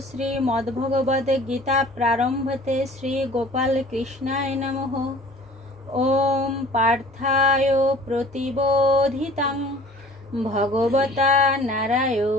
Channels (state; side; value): normal; both; correlation 0.48